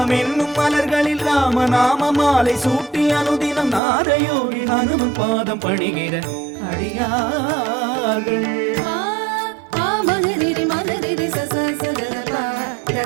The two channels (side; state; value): left; drops out; at 3.8 s